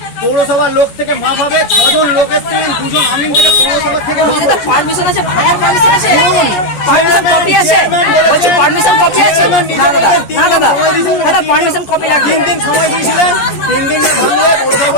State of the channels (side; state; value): right; late; 14 ms